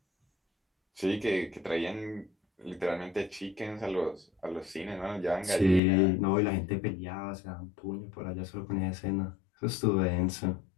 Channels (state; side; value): drops out; right; at 5.8 s